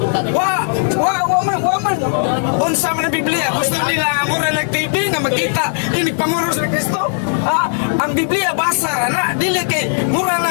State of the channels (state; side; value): silent; right; digital silence